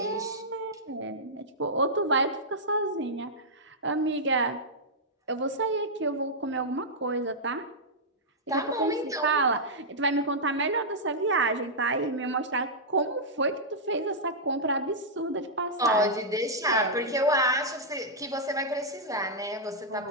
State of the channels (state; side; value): normal; both; correlation -0.09